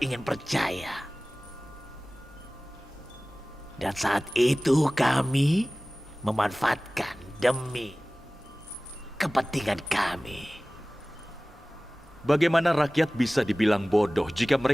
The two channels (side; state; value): both; normal; correlation 0.98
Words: ingin percaya. Dan saat itu kami memanfaatkan demi kepentingan kami. Bagaimana rakyat bisa dibilang bodoh jika